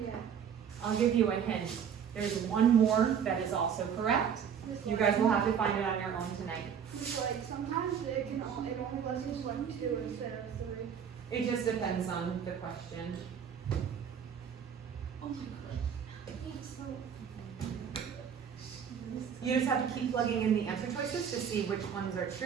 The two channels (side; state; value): left; quieter; 7.8 dB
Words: Yeah. I'll give you a hint. There's one more that is also correct. You guys will have to find it on your own tonight. It's like sometimes it only lets you select 2 instead of 3. It just depends on the question. Oh my god. It's so. You just have to keep plugging in the answer choices to see which ones are